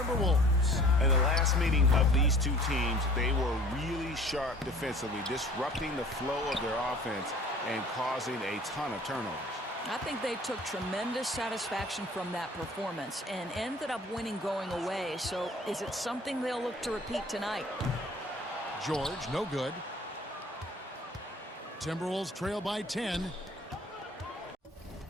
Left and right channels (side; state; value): both; normal; correlation 0.49